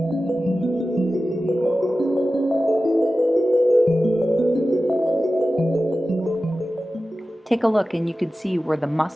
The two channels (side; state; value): both; normal; correlation 0.94